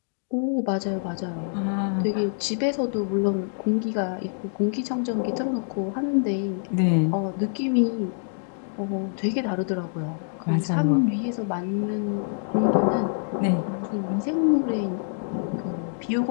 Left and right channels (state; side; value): silent; right; digital silence